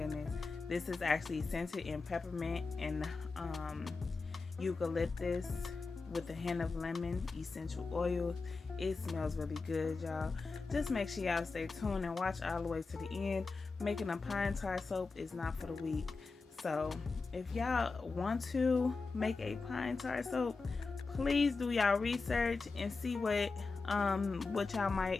This is actually scented in peppermint and eucalyptus with a hint of lemon essential oils. It smells really good, y'all. Just make sure y'all stay tuned and watch all the way to the end. Making a pine tar soap is not for the weak. So if y'all want to make a pine tar soap, please do y'all research and see what y'all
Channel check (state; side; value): quieter; right; 4.2 dB